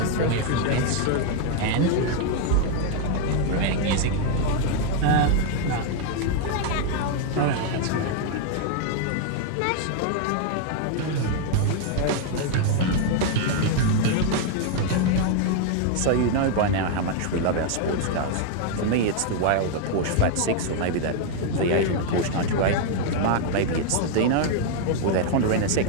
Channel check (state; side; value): different; both; correlation 0.00